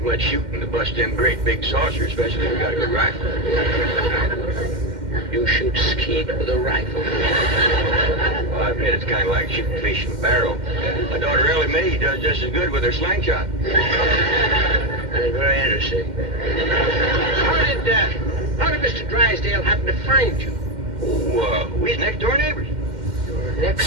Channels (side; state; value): left; late; 2.1 ms